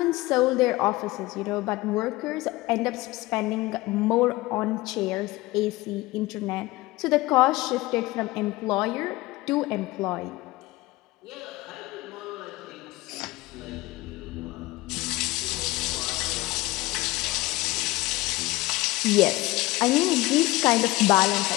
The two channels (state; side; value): quieter; right; 20.1 dB